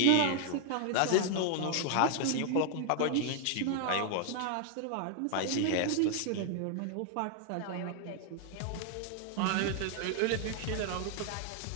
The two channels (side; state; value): both; different; correlation 0.00